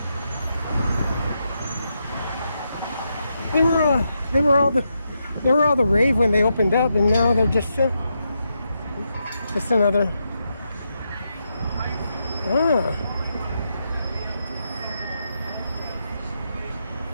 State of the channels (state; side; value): inverted; both; correlation -0.83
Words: They were all the rave when they opened up, and now they're just another.